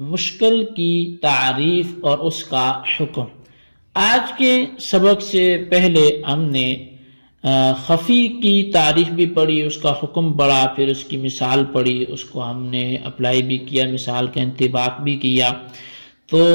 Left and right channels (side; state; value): both; inverted; correlation -1.00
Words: مشکل کی تعریف اور اس کا حکم۔ آج کے سبق سے پہلے ہم نے خفی کی تعریف بھی پڑھی، اس کا حکم پڑھا، پھر اس کی مثال پڑھی، اس کو ہم نے اپلائی بھی کیا، مثال کا انطباق بھی کیا۔ تو